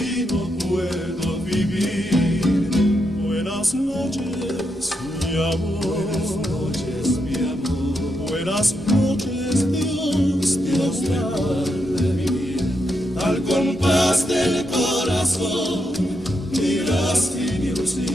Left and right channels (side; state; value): both; normal; correlation 0.82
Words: no puedo vivir. Buenas noches, mi amor. Buenas noches, mi amor. Buenas noches, Dios te guarde mi vida. Al compás del corazón dirás sin